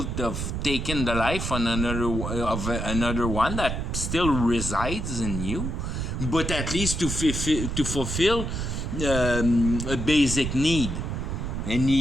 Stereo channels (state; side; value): noise; right; rumble, 3 dB below the sound